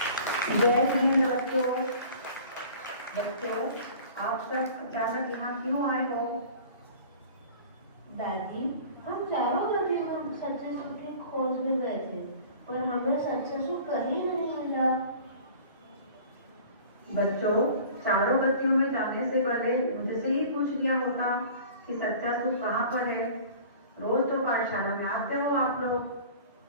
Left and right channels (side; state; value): both; inverted; correlation -0.45